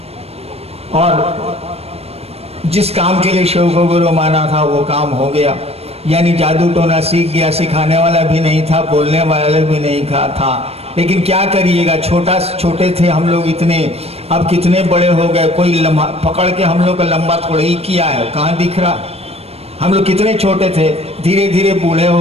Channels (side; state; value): left; late; 0.29 ms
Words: और जिस काम के लिए शिव को गुरु माना था वो काम हो गया। यानी जादू टोना सीख गया, सिखाने वाला भी नहीं था, बोलने वाला भी नहीं था। लेकिन क्या करिएगा, छोटे थे हम लोग इतने, अब कितने बड़े हो गए, कोई पकड़ के हम लोग का लंबा थोड़ा ही किया है, कहाँ दिख रहा। हम लोग कितने छोटे थे, धीरे धीरे बूढ़े